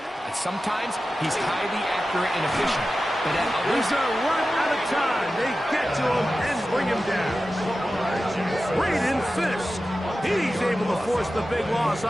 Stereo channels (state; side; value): normal; both; correlation 0.94